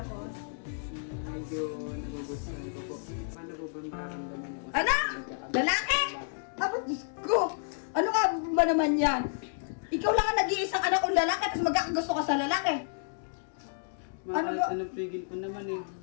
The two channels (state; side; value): silent; right; digital silence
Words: Medyo nagugustuhan ko po. Paano po ba mararamdaman niyo? Anak! Lalaki! Apat, Diyos ko! Ano ka ba naman yan? Ikaw lang ang nag-iisang anak kong lalaki tapos magkakagusto ka sa lalaki. Ano ba? Anong pigil ko naman eh.